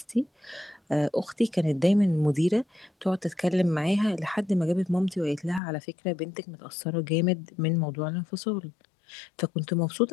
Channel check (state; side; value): drops out; right; at 5.6 s